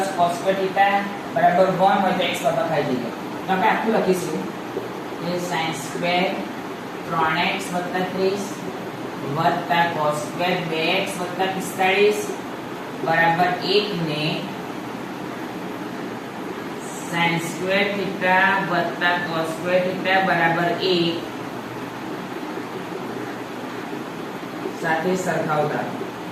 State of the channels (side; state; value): both; identical; correlation 1.00